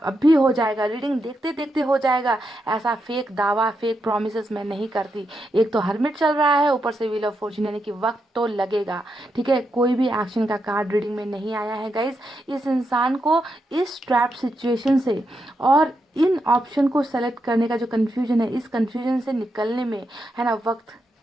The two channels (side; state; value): both; normal; correlation 0.84